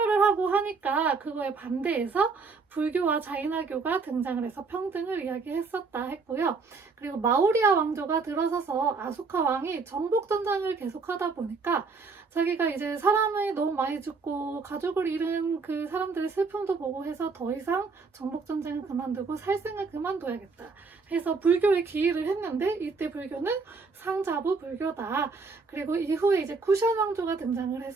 하고 하니까 그거에 반대해서 불교와 자이나교가 등장을 해서 평등을 이야기했었다 했고요. 그리고 마우리아 왕조가 들어서서 아소카 왕이 정복 전쟁을 계속하다 보니까 자기가 이제 사람이 너무 많이 죽고 가족을 잃은 그 사람들의 슬픔도 보고 해서 더 이상 정복 전쟁을 그만두고 살생을 그만둬야겠다 해서 불교에 기일을 했는데, 이때 불교는 상자부 불교다. 그리고 이후에 이제 쿠션 왕조가 등장을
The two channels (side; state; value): left; quieter; 4.5 dB